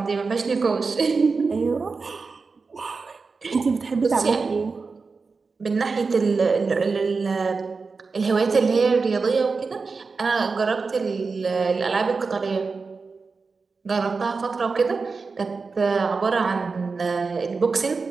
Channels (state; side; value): quieter; left; 4.5 dB